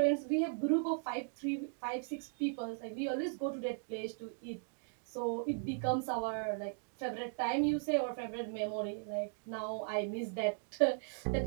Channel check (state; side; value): silent; left; 53 dB below the other